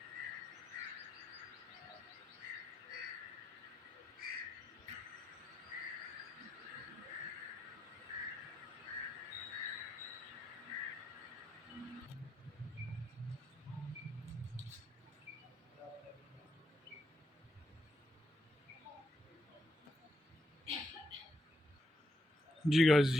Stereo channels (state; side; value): normal; both; correlation 0.80